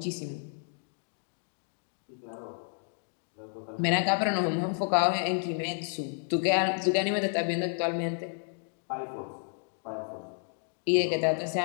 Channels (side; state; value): right; silent; 57 dB below the other